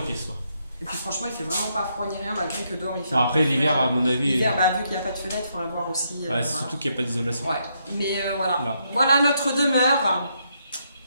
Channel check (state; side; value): inverted; both; correlation -0.77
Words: pièce. Quoi. Et puis franchement, il fait vraiment pas froid ni rien, malgré que dehors il fait. Alors, après, l'hiver, à mon avis. L'hiver, vu qu'il n'y a pas de fenêtre, il faudrait voir aussi. Ouais, voilà. surtout qu'il n'y a pas d'isolation. Ouais, mais voilà. Là. Voilà notre demeure.